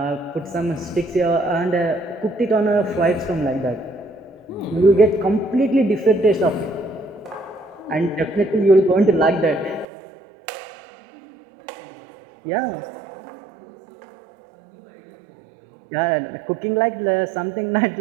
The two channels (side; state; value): left; drops out; at 9.9 s